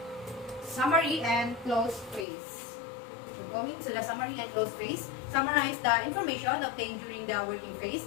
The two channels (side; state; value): right; drops out; at 2.2 s